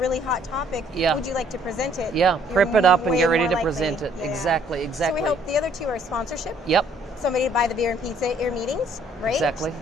hot topic. Would you like to present it? Prep it up and get ready to likely. present it. Exactly. So we hope the other 2 are sponsorship. Somebody to buy the beer and pizza at your meetings, right? Exactly.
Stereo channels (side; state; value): both; normal; correlation 0.62